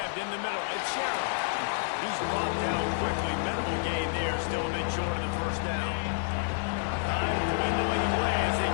in the middle. It's Sherrill. He's brought down quickly. Minimal gain there. Still a bit short of the first down. Time dwindling away as they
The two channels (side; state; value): right; silent; digital silence